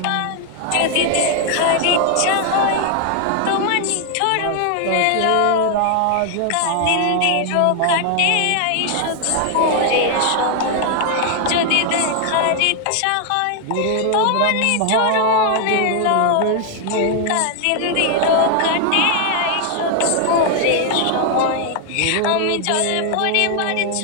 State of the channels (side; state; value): both; different; correlation 0.00